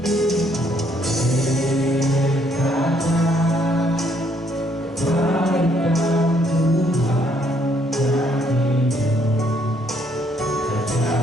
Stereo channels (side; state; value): both; normal; correlation 0.69